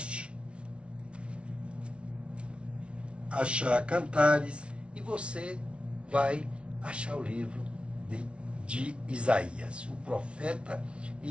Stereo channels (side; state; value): left; late; 0.059 ms